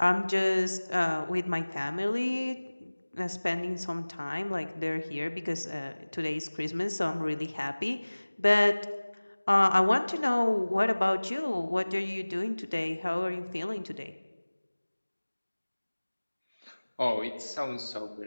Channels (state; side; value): inverted; both; correlation -1.00